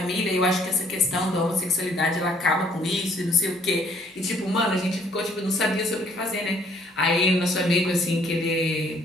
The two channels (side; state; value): both; normal; correlation 0.62